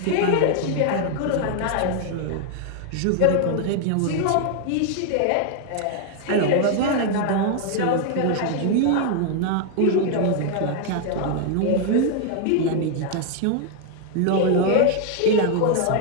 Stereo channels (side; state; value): both; different; correlation 0.00